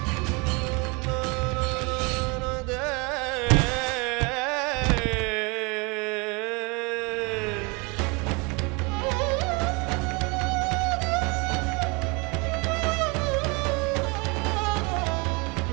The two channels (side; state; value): left; quieter; 29.2 dB